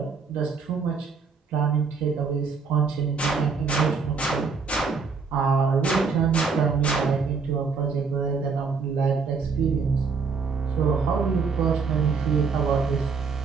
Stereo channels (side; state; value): left; quieter; 5.1 dB